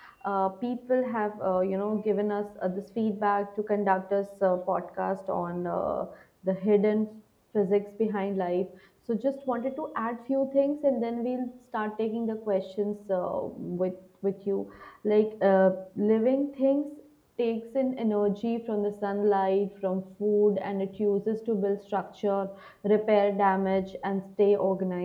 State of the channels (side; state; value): both; identical; correlation 1.00